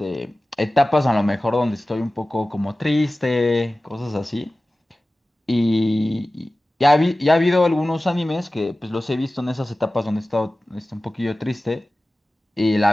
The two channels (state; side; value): normal; both; correlation 0.96